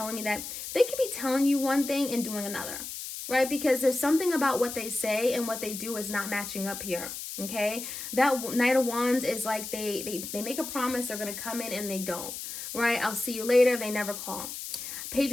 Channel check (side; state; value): left; noise; hiss, 8 dB below the sound